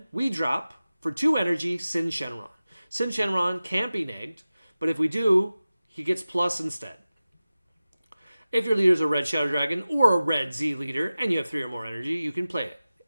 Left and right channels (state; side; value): inverted; both; correlation -0.96